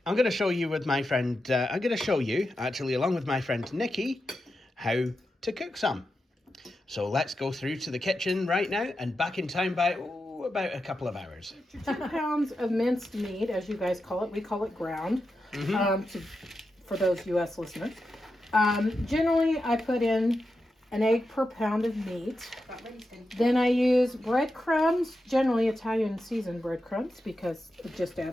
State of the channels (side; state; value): both; normal; correlation 0.89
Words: I'm going to show you with my friend, actually, along with my friend Nicci, how to cook some. So let's go through to the kitchen right now and back in time by about a couple of hours. 2 pounds of minced meat, as you guys call it. We call it ground, for those U.S. listeners. Generally, I put in an egg per pound of meat. Then I use breadcrumbs, generally Italian seasoned breadcrumbs, because it just